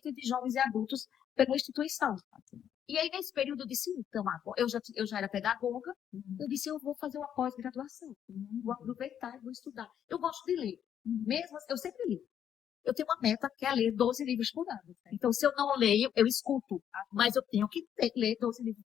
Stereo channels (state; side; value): quieter; right; 9.3 dB